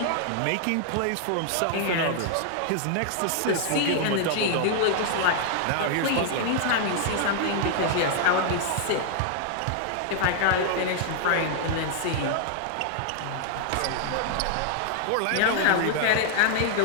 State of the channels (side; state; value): both; different; correlation -0.01